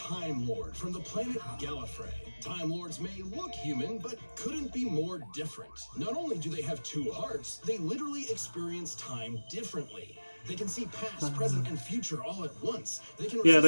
Lord from the planet Gallifrey. Time Lords may look human, but couldn't be more different. Not only do they have two hearts, they literally experience time differently. They can see past, present, and future all at once. They can Yeah,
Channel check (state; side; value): inverted; both; correlation -1.00